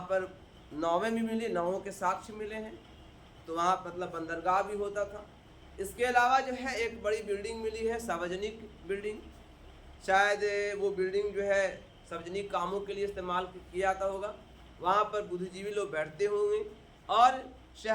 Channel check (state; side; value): identical; both; correlation 1.00